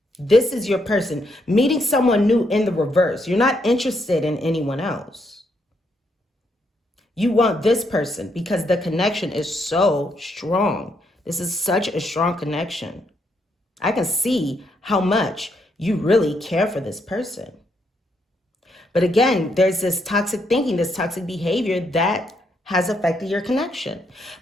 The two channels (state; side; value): normal; both; correlation 0.76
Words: This is your person. Meeting someone new in the reverse. You're not interested in anyone else. You want this person because the connection is so strong. This is such a strong connection. I can see how much you really care for this person. But again, there's this toxic thinking, this toxic behavior that has affected your connection.